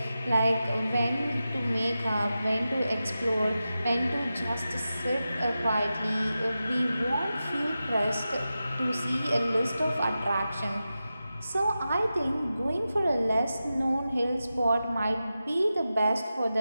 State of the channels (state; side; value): inverted; both; correlation -0.92